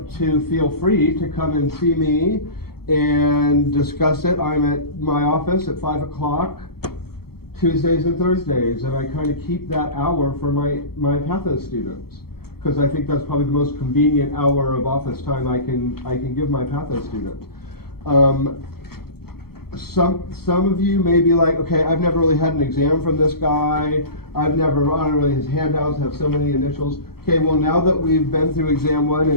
to feel free to come and see me and discuss it. I'm at my office at 5 o'clock Tuesdays and Thursdays, and I kind of keep that hour for my Patho students, because I think that's probably the most convenient hour of office time I can give my Patho students. Some of you may be like, okay, I've never really had an exam from this guy. I don't really, his handouts have so many initials. Okay, well, now that we've been through exam 1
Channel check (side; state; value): right; late; 0.95 ms